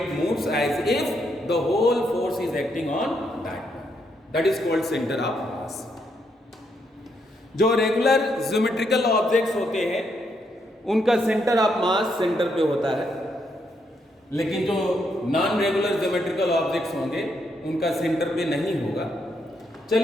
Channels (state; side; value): normal; both; correlation 0.77